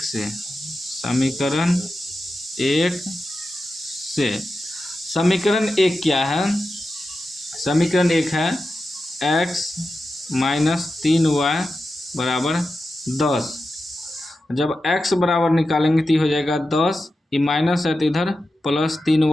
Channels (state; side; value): normal; both; correlation 0.91